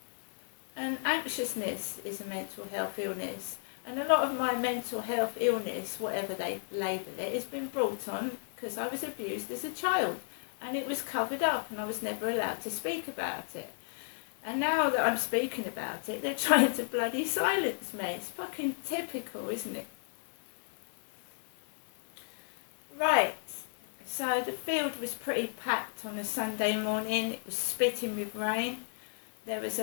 And anxiousness is a mental health illness. And a lot of my mental health illness, whatever they label it, has been brought on because I was abused as a child. And it was covered up and I was never allowed to speak about it. And now that I'm speaking about it, they're trying to bloody silence me. It's fucking typical, isn't it? Right, so the field was pretty packed on a Sunday morning. It was spitting with rain. There was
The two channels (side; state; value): right; silent; 55 dB below the other